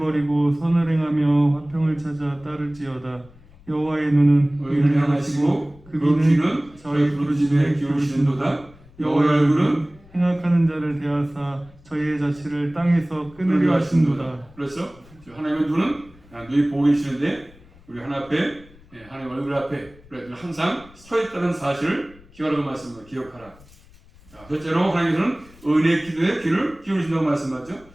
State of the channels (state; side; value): noise; left; rumble, 25 dB below the sound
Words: 선을 행하며 화평을 찾아 따를지어다. 여호와의 눈은 의인을 향하시고 그 귀는 저희 부르짖음에 기울이시는도다. 여호와의 얼굴은 행악하는 자를 대하사 저희의 자취를 땅에서 끊으려 하신도다. 그렇죠? 하나님의 눈은 눈이 보고 계시는데 우리 하나님 앞에 하나님 얼굴 앞에 항상 서 있다는 사실을 기억하라고 말씀합니다. 기억하라. 자, 첫째로 하나님께서는 의인의 기도에 귀를 기울이신다고 말씀하죠.